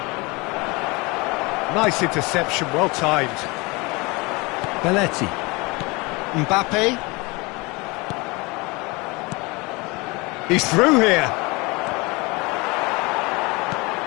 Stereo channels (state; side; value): quieter; right; 25.8 dB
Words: Nice interception, well timed. Belletti. Mbappe. He's through here.